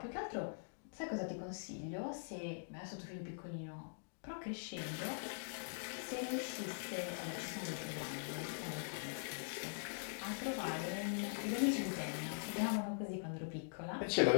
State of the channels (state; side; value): silent; right; digital silence